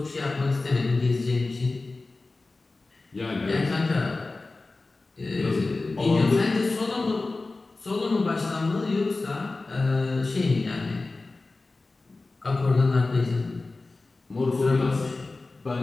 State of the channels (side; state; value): right; quieter; 3.4 dB